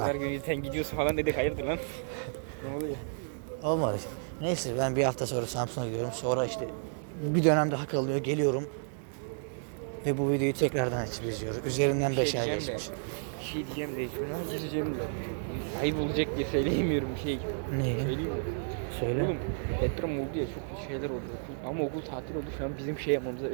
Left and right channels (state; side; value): silent; left; digital silence